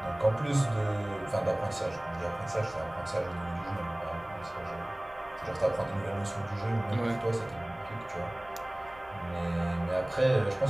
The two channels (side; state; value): right; noise; rumble, 24 dB below the sound